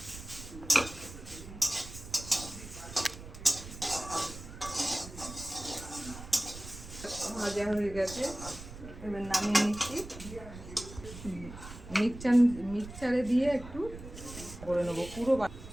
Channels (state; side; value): noise; right; rumble, 13 dB below the sound